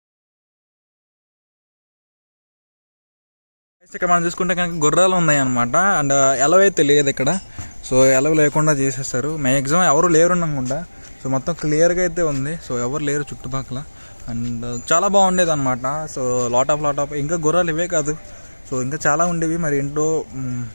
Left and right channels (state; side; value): inverted; both; correlation -1.00